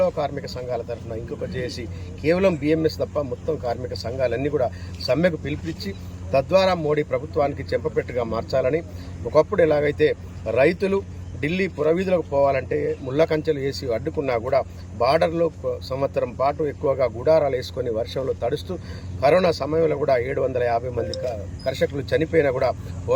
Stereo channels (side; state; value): both; identical; correlation 1.00